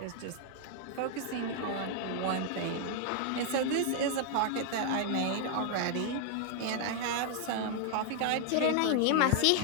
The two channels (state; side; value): different; both; correlation 0.00